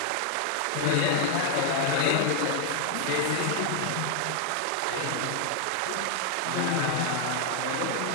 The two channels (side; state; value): both; different; correlation 0.00